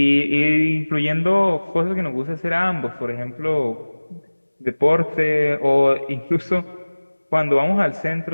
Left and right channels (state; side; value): inverted; both; correlation -1.00